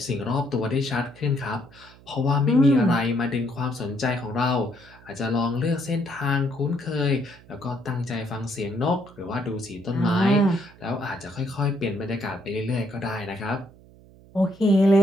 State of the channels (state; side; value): noise; right; hum, 24 dB below the sound